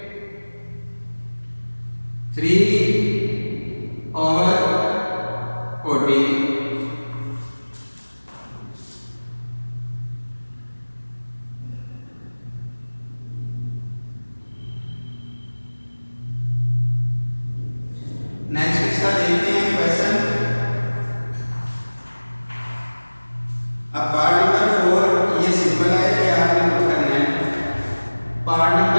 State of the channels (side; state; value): both; inverted; correlation -1.00